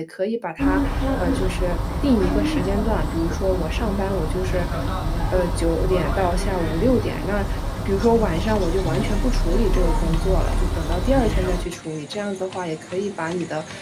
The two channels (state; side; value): identical; both; correlation 1.00